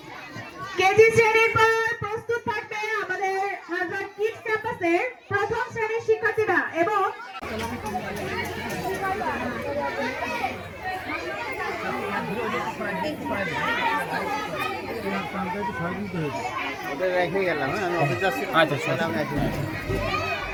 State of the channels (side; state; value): both; identical; correlation 1.00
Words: কেজি শ্রেণীর পর প্রস্তুত থাকবে আমাদের হাজার কিডস ক্যাম্পাসের প্রথম শ্রেণীর শিক্ষার্থীরা এবং রেখে গেলাম আমি অফিস যাচ্ছি আচ্ছা